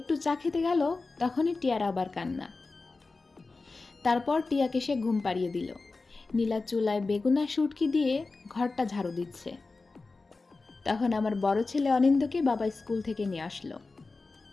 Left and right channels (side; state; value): right; quieter; 3.8 dB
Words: চা খেতে গেল তখনই টিয়ার আবার কান্না। তারপর টিয়াকে সে ঘুম পাড়িয়ে দিল। নীলা চুলায় বেগুন আর শুটকি দিয়ে ঘরটা ঝাড়ু দিচ্ছে। তখন আমার বড় ছেলে অনিন্দকে বাবা স্কুল থেকে নিয়ে আসলো।